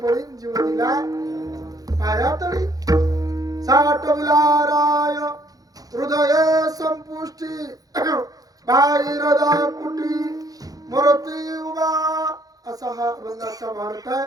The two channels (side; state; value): left; late; 0.18 ms